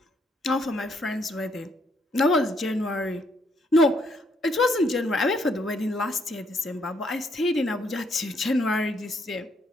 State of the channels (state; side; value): normal; both; correlation 0.72